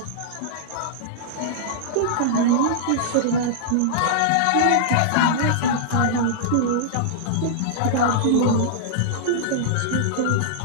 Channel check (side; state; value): both; different; correlation -0.02